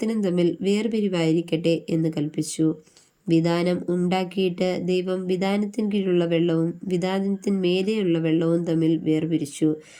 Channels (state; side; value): identical; both; correlation 1.00